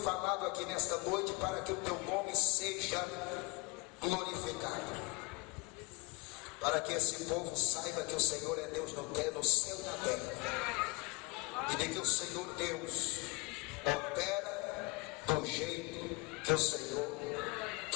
aqui nesta noite, para que o teu nome seja glorificado, para que esse povo saiba que o Senhor é Deus no céu e na terra, e de que o Senhor Deus opera do jeito que o Senhor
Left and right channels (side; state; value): right; quieter; 27.2 dB